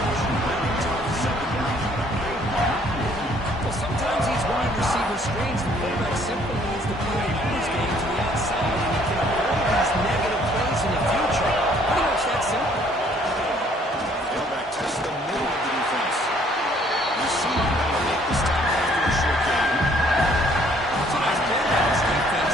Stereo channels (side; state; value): both; normal; correlation 0.62